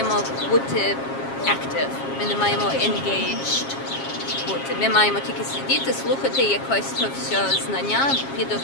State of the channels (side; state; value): right; late; 7.4 ms